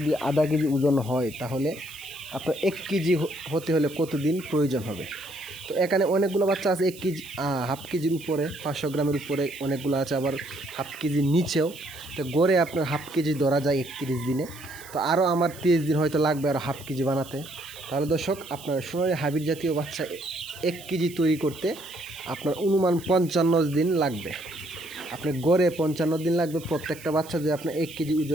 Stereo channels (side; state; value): right; noise; hiss, 18 dB below the sound